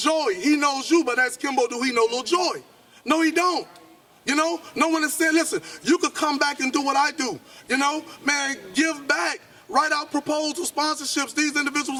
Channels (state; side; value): identical; both; correlation 1.00